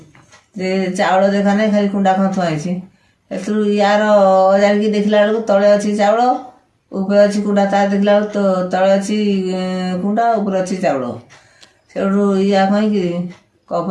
ଯେ ଚାଉଳ ଦେଖା ନାହିଁ, ଖାଲି କୁଣ୍ଡା କ'ଣ ଥୁଆ ହେଇଛି। ଏଥିରୁ ୟାର ଅଜାଡ଼ିକି ଦେଖିଲା ବେଳକୁ ତଳେ ଅଛି ଚାଉଳ, ଉପରେ ଅଛି କୁଣ୍ଡା। ତା ଦେଖିଲା ବେଳକୁ ତଳେ ଅଛି କୁଣ୍ଡା, ଉପରେ ଅଛି ଚାଉଳ। ସେଠୁ ୟା କହିକିରି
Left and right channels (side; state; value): both; identical; correlation 1.00